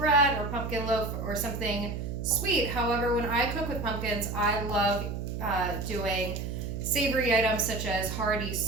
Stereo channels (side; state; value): right; noise; hum, 5 dB below the sound